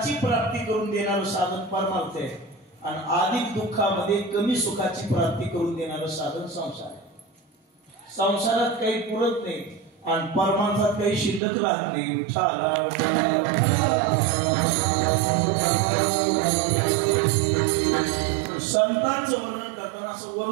प्राप्ती करून देणारं साधन परमार्थ आहे आणि अधिक दुःखामध्ये कमी सुखाची प्राप्ती करून देणारं साधन संसार आहे. संसारात काही पुरत नाही आणि परमार्थात काही शिल्लक राहत नाही. संतांचं वर्णन करताना असं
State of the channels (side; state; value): left; drops out; at 11.4 s